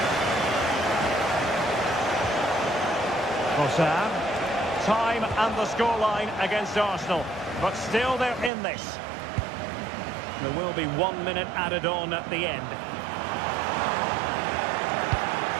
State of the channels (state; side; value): drops out; left; at 8.5 s